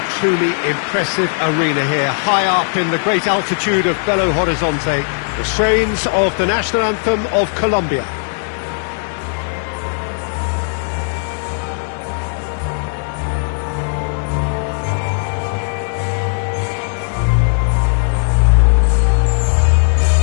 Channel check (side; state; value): right; silent; 68 dB below the other